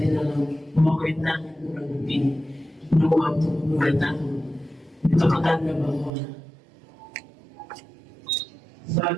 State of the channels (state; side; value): drops out; left; at 6.1 s